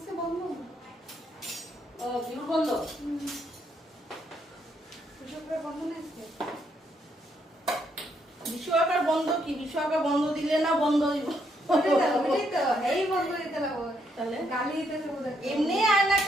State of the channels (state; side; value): normal; both; correlation 0.75